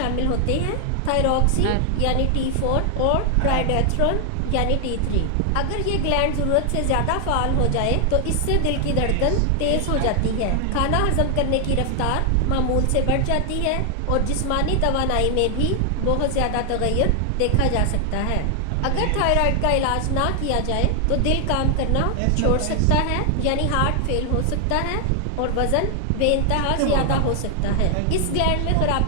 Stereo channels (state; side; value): different; both; correlation 0.00